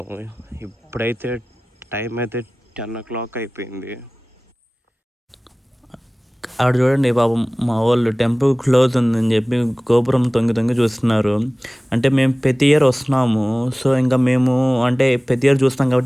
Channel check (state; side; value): normal; both; correlation 0.98